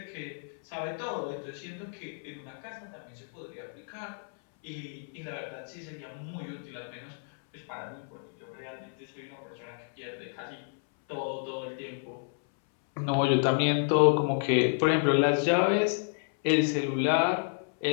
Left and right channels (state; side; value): silent; right; 57 dB below the other